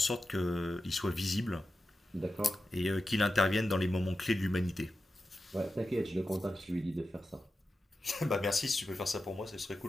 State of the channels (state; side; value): normal; both; correlation 0.92